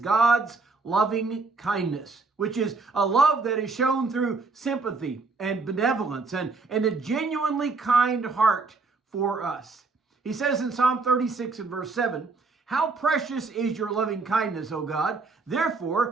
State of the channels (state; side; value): quieter; left; 4.0 dB